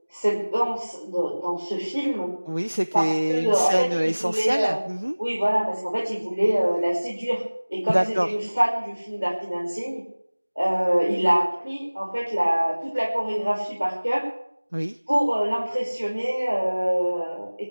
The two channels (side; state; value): both; inverted; correlation -1.00